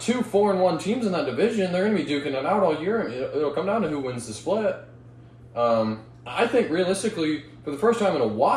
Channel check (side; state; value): both; identical; correlation 1.00